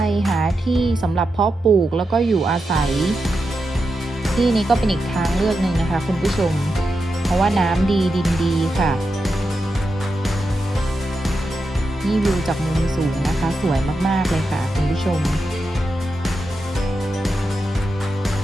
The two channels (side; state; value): both; normal; correlation 0.88